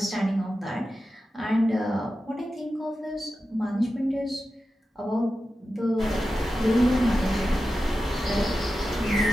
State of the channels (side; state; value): both; normal; correlation 0.92